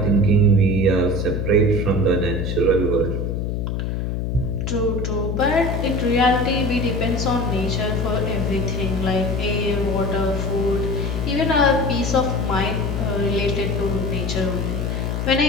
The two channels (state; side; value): noise; left; hum, 1 dB below the sound